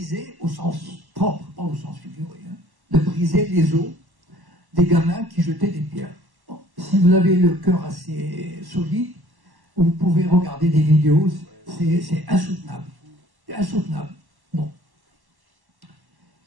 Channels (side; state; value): left; late; 1.1 ms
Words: au sens propre, pas au sens figuré, hein, de briser les os des gamins qui jetaient des pierres. Bon, si vous avez le cœur assez solide, vous pouvez regarder des vidéos, c'est insoutenable. C'est insoutenable. Bon.